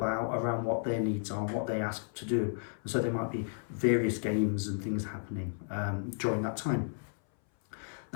out around what their needs are and what they ask to do. And so there might be various games and things happening during that time.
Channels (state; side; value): silent; right; 56 dB below the other